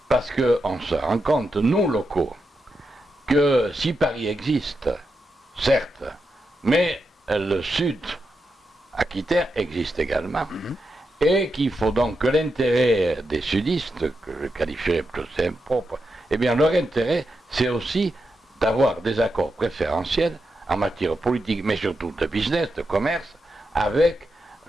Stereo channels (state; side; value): normal; both; correlation 0.86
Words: parce qu'on se rend compte, nous, locaux, que si Paris existe, certes, mais le sud aquitain existe également, et qu'il faut donc que l'intérêt des sudistes, que je qualifierais plutôt impropre, eh bien, leur intérêt, c'est aussi d'avoir des accords préférentiels en matière politique, mais surtout de business, de commerce, avec